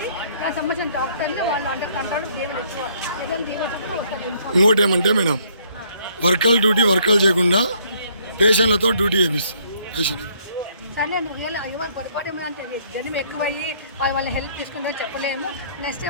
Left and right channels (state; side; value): inverted; both; correlation -0.64